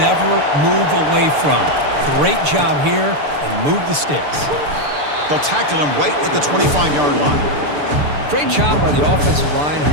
move away from. Great job here, and move the sticks. They'll tackle him right at the 25-yard line. Great job by the offensive line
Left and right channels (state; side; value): late; left; 6.8 ms